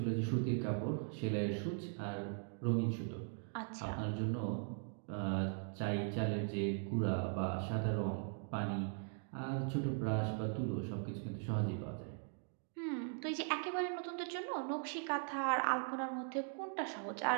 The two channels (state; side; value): silent; left; 51 dB below the other